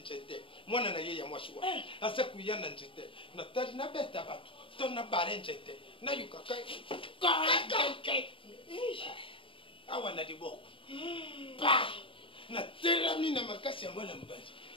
mwana na yeye mwashwa asa kuyana njite na tali na beta batu to na bare njete na yuka kai awa na diboko pa na terami na makasi ya mwana mbali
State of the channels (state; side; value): late; right; 0.25 ms